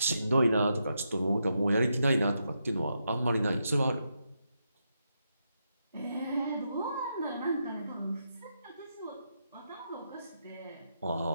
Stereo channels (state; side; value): inverted; both; correlation -0.83